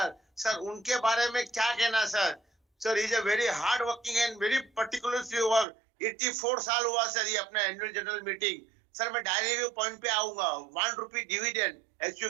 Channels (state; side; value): drops out; left; at 5.7 s